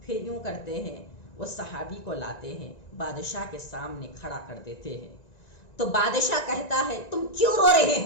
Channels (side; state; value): right; late; 1.9 ms